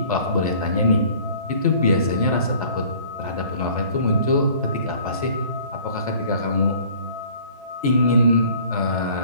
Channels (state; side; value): inverted; both; correlation -0.51